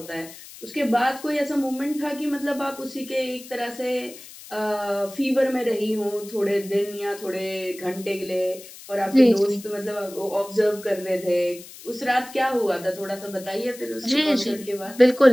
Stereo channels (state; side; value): noise; left; hiss, 17 dB below the sound